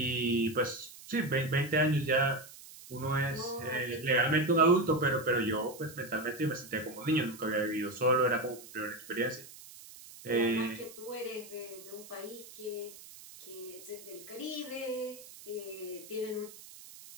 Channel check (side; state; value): right; noise; hiss, 17 dB below the sound